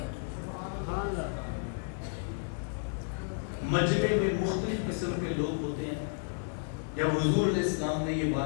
مجمع میں مختلف قسم کے لوگ ہوتے ہیں۔ جب حضور علیہ السلام نے یہ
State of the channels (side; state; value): right; silent; digital silence